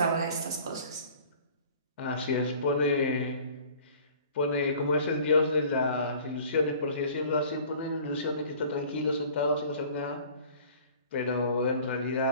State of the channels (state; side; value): inverted; both; correlation -0.48